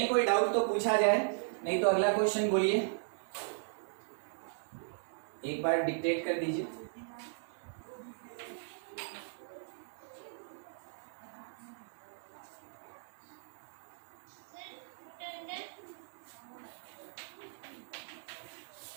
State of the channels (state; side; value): silent; left; digital silence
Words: कोई डाउट तो पूछा जाए, नहीं तो अगला क्वेश्चन बोलिए, एक बार डिक्टेट कर दीजिए।